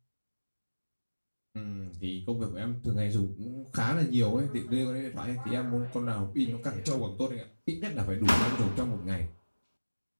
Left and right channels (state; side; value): inverted; both; correlation -1.00